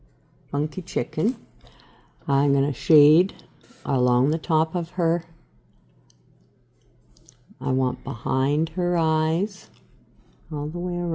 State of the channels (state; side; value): identical; both; correlation 1.00